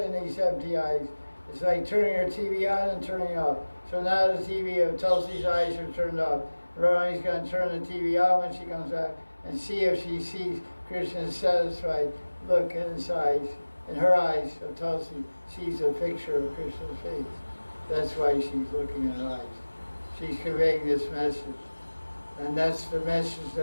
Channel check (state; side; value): inverted; both; correlation -1.00